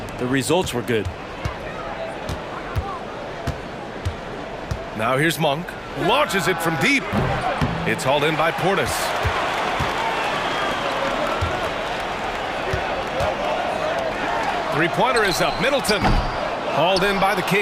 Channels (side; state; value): both; identical; correlation 1.00